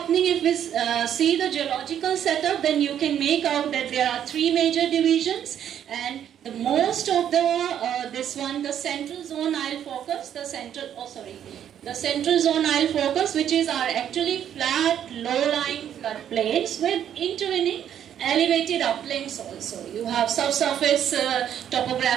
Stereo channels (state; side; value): quieter; left; 9.8 dB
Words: if we see the geological setup, then you can make out that there are three major divisions, and the most of the this one, the central zone I'll focus, the central zone I'll focus, which is our actually flat, low-lying floodplains with intervening elevated uplands also. You have subsurface